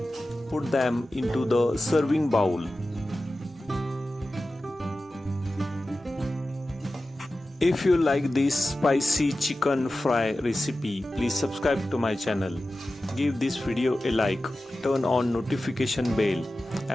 Put them into the serving bowl. If you like this spicy chicken fry recipe, please subscribe to my channel. Give this video a like, turn on notification bell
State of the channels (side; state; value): both; normal; correlation 0.94